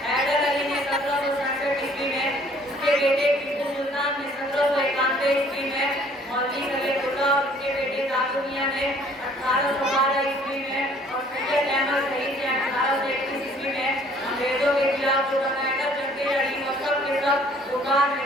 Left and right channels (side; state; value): both; normal; correlation 0.57